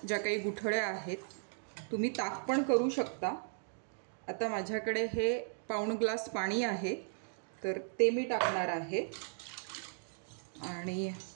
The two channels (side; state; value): left; silent; digital silence